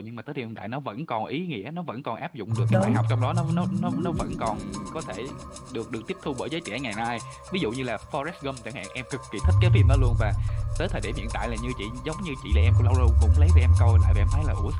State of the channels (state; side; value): identical; both; correlation 1.00